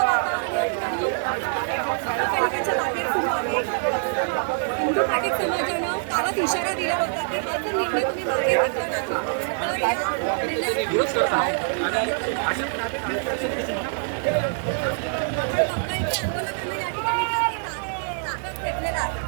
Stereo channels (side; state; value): left; silent; digital silence